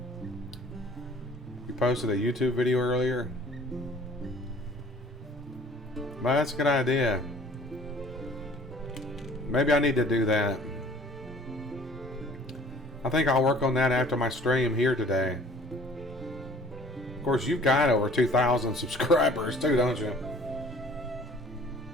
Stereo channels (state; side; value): normal; both; correlation 0.51